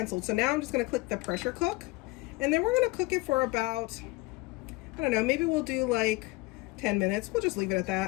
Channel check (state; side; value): quieter; right; 21.9 dB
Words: So now I'm just going to click the pressure cook, and then we're going to cook it for about, I don't know, maybe we'll do like 10 minutes. We'll just leave it at